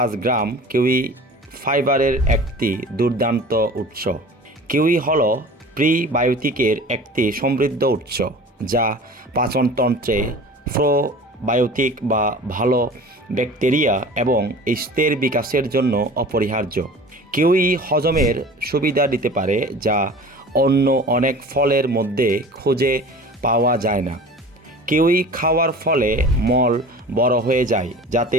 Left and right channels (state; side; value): normal; both; correlation 0.41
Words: গ্রাম কিউই ফাইবারের একটি দুর্দান্ত উৎস। কিউই হল প্রিবায়োটিকের একটি সমৃদ্ধ উৎস, যা পাচনতন্ত্রে প্রোবায়োটিক বা ভালো ব্যাকটেরিয়া এবং ইস্টের বিকাশের জন্য অপরিহার্য। কিউই হজমের সুবিধা দিতে পারে, যা অন্য অনেক ফলের মধ্যে খুঁজে পাওয়া যায় না। কিউই খাওয়ার ফলে মল বড় হয়ে যায়, যাতে